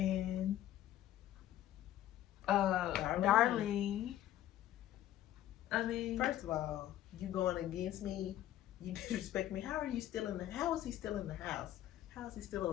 Darlene." I mean, first of all, you going against me? You disrespect me. How are you still in the? How is he still in the house? How is he still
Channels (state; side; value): quieter; right; 12.9 dB